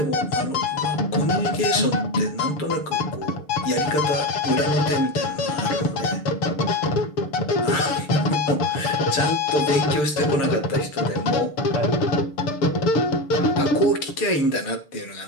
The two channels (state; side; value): late; right; 6.7 ms